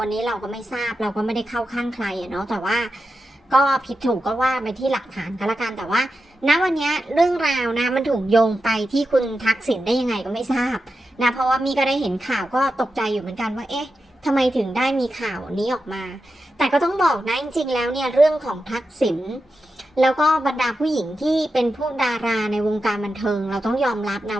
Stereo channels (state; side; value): normal; both; correlation 0.90